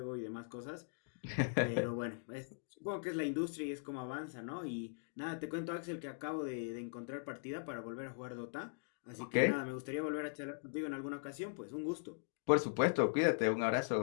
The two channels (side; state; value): right; silent; digital silence